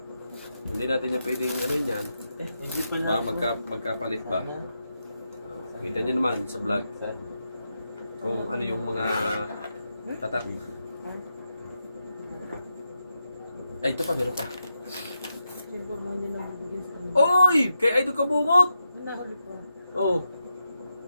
Hindi natin yung pwedeng ano yun yan. Hindi pala. Ba, magkapalit ba? Kita nyo naman sa vlog kung ano yung mga tatak. Ay, ito pa, meron pa. Siyempre mo hindi na bibigyan sa kanya. Oy! Kay Idol Kabungot! Nahuli pa. Oh,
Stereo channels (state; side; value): inverted; both; correlation -0.86